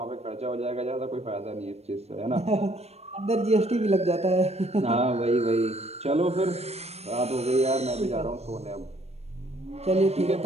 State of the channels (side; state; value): left; late; 0.31 ms